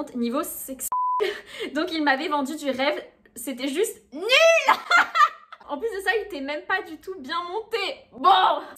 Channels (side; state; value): both; identical; correlation 1.00